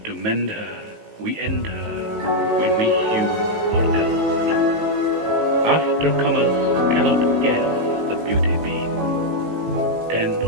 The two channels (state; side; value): late; left; 19 ms